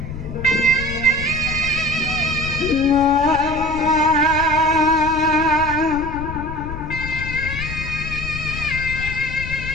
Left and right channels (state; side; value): noise; left; rumble, 9 dB below the sound